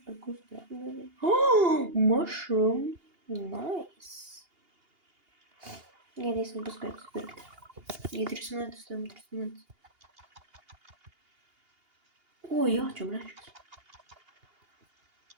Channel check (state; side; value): late; left; 2.8 ms